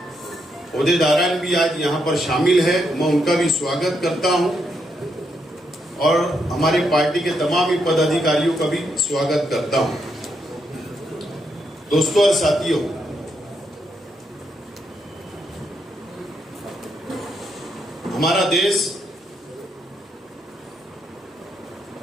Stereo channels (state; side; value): normal; both; correlation 0.79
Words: ओहदेदारान भी आज यहां पर शामिल है। मैं उनका भी स्वागत करता हूं और हमारी पार्टी के तमाम ही पदाधिकारियों का भी स्वागत करता हूं। दोस्तों और साथियों, हमारा देश